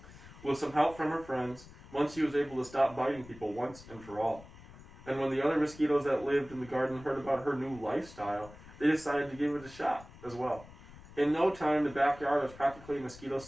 With some help from her friends, Munchy was able to stop biting people once and for all. And when the other mosquitoes that lived in the garden heard about her new lifestyle, they decided to give it a shot as well. In no time, the backyard was practically a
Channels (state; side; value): noise; left; rumble, 19 dB below the sound